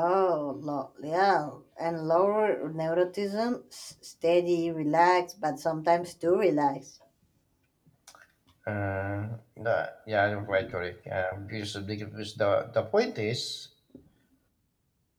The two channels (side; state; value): both; identical; correlation 1.00